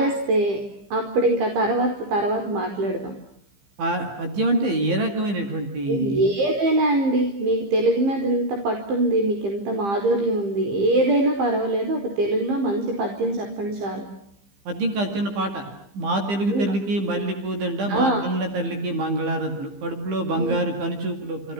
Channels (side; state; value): left; late; 15 ms